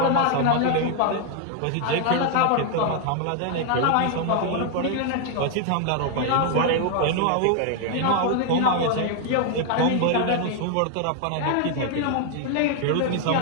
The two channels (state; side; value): different; both; correlation 0.00